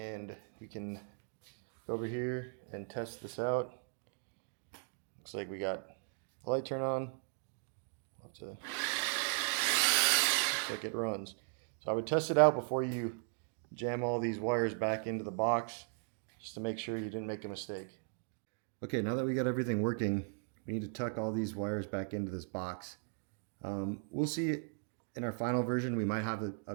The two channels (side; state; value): left; silent; 53 dB below the other